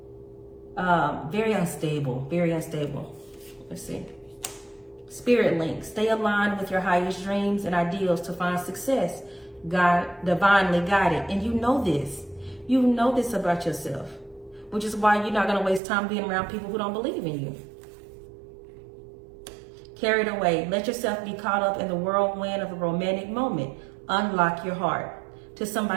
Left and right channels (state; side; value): drops out; left; at 15.8 s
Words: Very unstable, very unstable. Let's see. Spirit link, stay aligned with your highest dreams and ideals to find success. God, divinely guided. And you know this. You know this about yourself, which is why you're not going to waste time being around people who don't believe in you. Carried away. Let yourself be caught up in the whirlwind of a romantic moment. Unlock your heart to